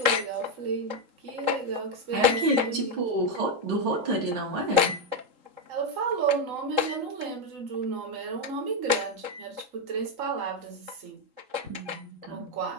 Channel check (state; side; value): late; left; 3.8 ms